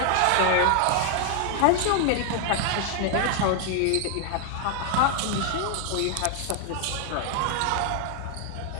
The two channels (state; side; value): different; both; correlation 0.00